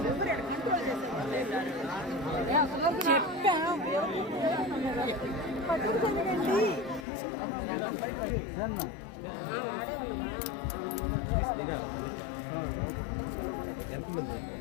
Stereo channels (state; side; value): drops out; right; at 7.1 s